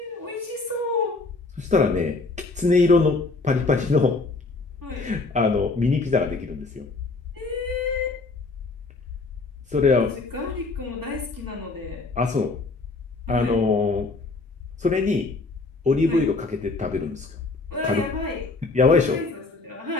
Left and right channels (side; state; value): right; quieter; 3.6 dB